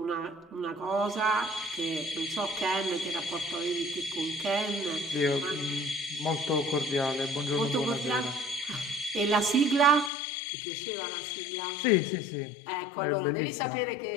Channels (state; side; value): drops out; right; at 10.1 s